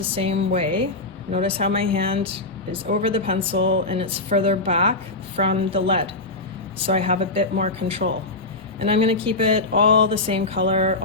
same way. Notice how my hand is over the pencil and it's further back from the lead, so I have a bit more control. And I'm going to keep it all the same color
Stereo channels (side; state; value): right; quieter; 3.1 dB